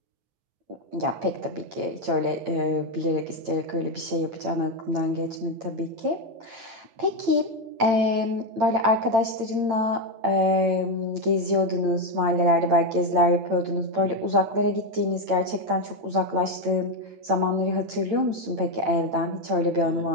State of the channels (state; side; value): late; left; 8.9 ms